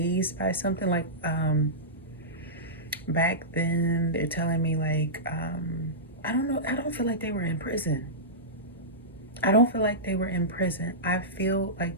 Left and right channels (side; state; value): both; normal; correlation -0.15